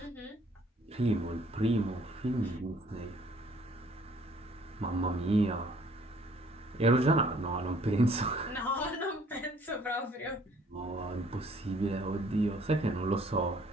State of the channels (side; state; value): both; normal; correlation 0.60